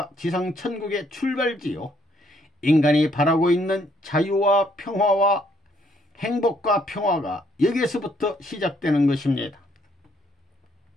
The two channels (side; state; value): both; normal; correlation 0.68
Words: 지상천국의 출발지요, 인간이 바라고 있는 자유와 평화와 행복과 평화가 여기에서부터 시작되는 것입니다.